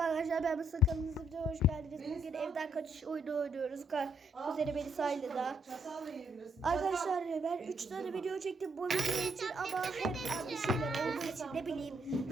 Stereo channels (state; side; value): normal; both; correlation 0.73